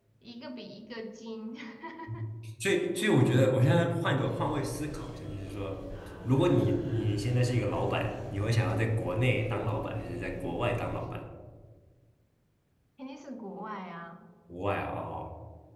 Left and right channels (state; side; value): identical; both; correlation 1.00